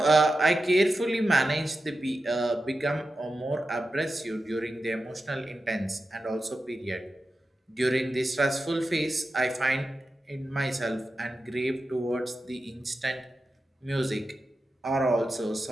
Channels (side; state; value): both; normal; correlation 0.91